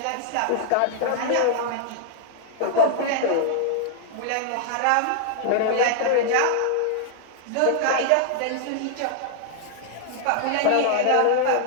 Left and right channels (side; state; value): both; different; correlation -0.01